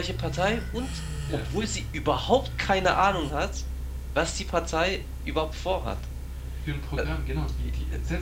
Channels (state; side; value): identical; both; correlation 1.00